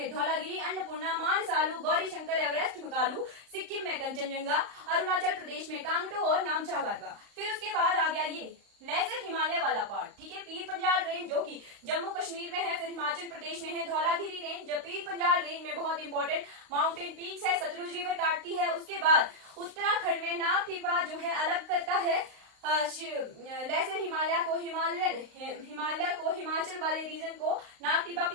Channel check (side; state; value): left; late; 35 ms